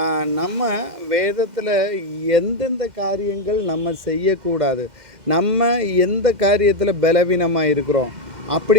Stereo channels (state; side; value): late; left; 2.1 ms